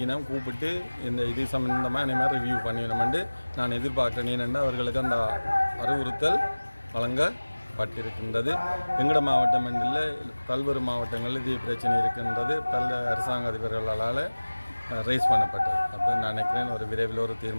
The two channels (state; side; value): inverted; both; correlation -1.00